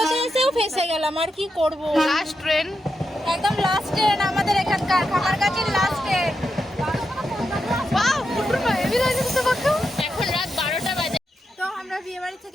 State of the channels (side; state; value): both; normal; correlation 0.86